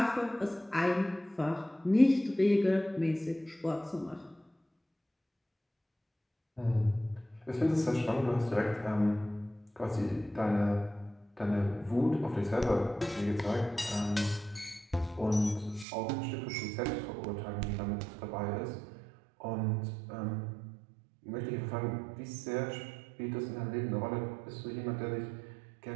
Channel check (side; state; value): left; drops out; at 15.9 s